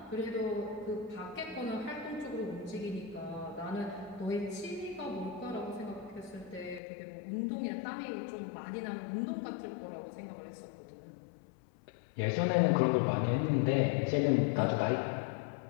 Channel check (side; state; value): right; drops out; at 6.8 s